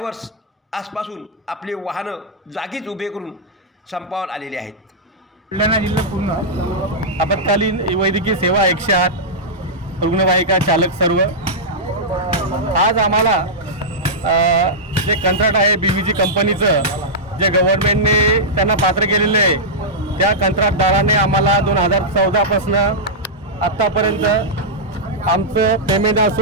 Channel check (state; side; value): normal; both; correlation -0.10